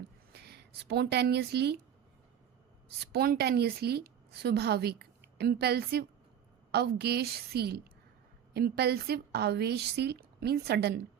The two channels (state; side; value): quieter; left; 9.2 dB